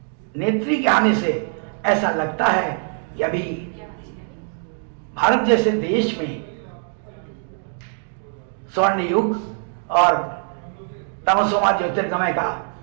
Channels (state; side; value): silent; left; 59 dB below the other